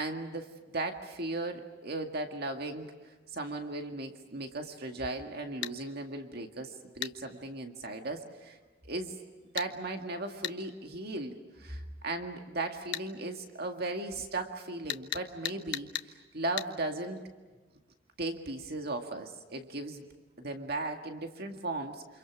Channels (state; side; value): normal; both; correlation -0.02